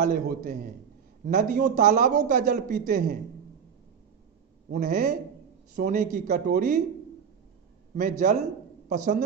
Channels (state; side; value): quieter; left; 7.1 dB